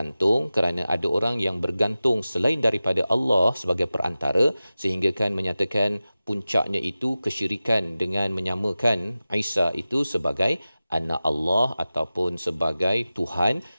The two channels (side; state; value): both; inverted; correlation -0.96